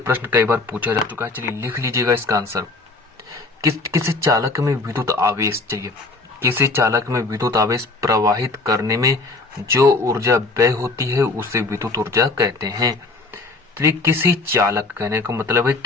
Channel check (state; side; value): quieter; right; 3.4 dB